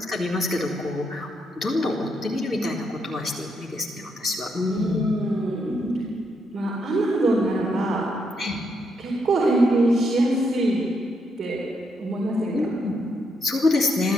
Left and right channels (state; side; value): normal; both; correlation 0.78